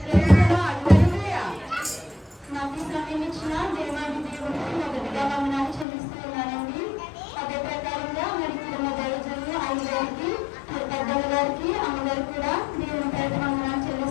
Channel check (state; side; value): drops out; right; at 5.9 s